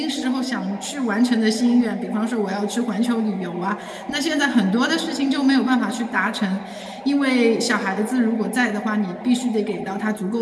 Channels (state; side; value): identical; both; correlation 1.00